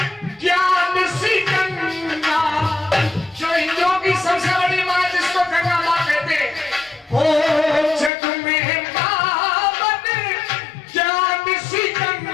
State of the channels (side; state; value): right; drops out; at 8.1 s